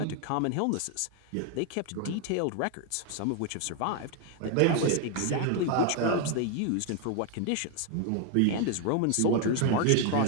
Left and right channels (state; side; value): different; both; correlation 0.01